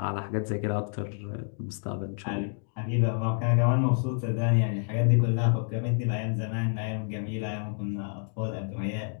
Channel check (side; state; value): right; silent; 59 dB below the other